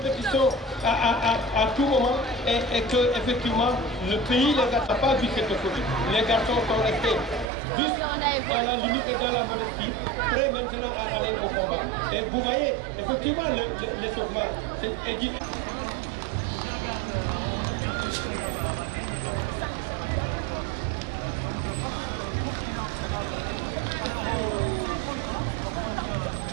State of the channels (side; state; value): left; drops out; at 7.5 s